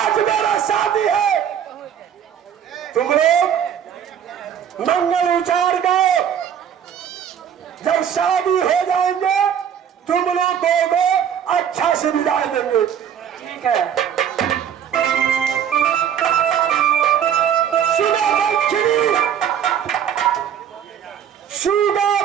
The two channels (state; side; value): quieter; left; 8.8 dB